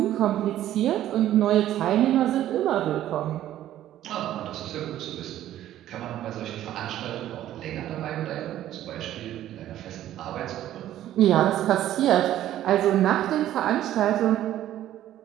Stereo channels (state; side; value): quieter; left; 12.7 dB